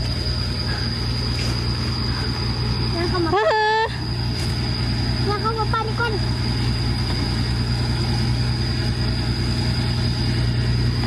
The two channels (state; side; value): identical; both; correlation 1.00